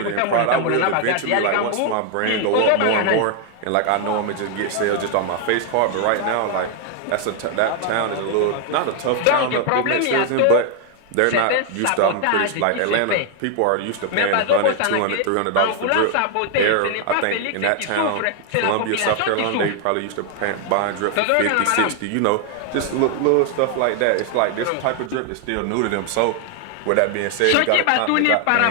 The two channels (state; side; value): different; both; correlation 0.00